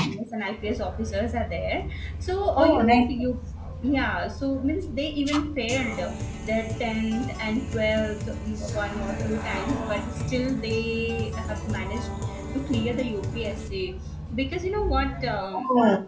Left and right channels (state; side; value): identical; both; correlation 1.00